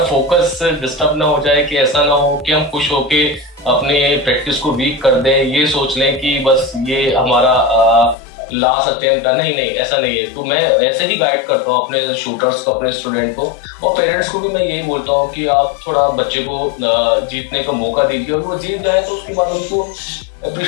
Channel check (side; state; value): right; drops out; at 8.2 s